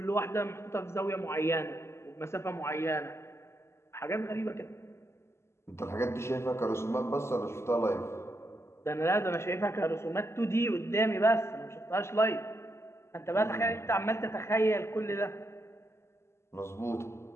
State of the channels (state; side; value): late; right; 0.13 ms